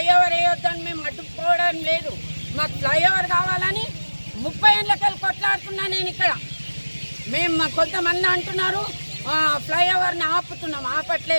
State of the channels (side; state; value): both; inverted; correlation -1.00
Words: వేయొద్దని మేము అడ్డుకోవడం లేదు. మాకు ఫ్లైఓవర్ కావాలని 30 ఏళ్ళకెళ్ళి కొట్లాడుతున్నా నేను ఇక్కడ. మేము కొంతమంది అంటున్నారు ఫ్లైఓవర్ని ఆపుతున్నాం.